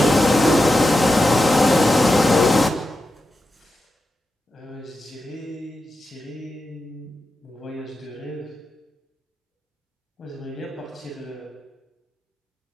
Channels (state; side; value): normal; both; correlation 0.90